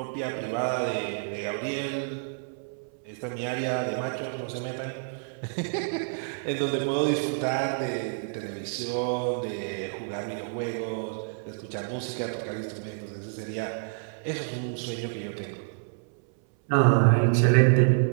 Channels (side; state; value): left; silent; 59 dB below the other